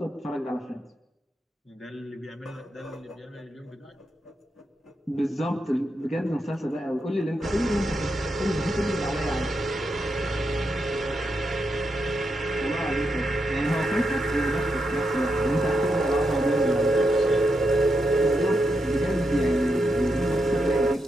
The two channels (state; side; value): normal; both; correlation 0.84